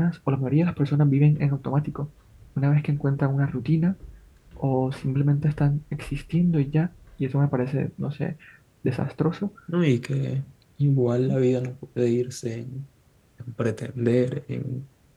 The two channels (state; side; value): identical; both; correlation 1.00